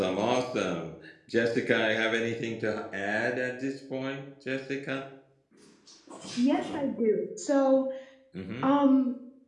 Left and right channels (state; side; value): identical; both; correlation 1.00